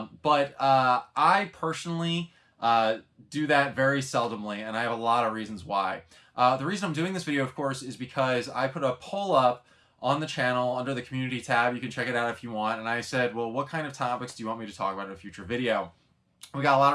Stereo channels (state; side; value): identical; both; correlation 1.00